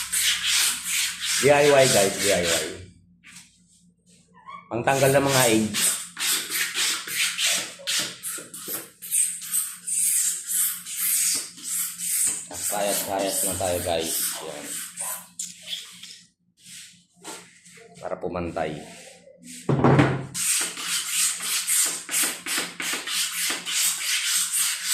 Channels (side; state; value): both; identical; correlation 1.00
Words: DIY guys, DIY. Pangtanggal ng mga AIDS. Kayat-kayat na tayo guys. Yan. Para pumantay.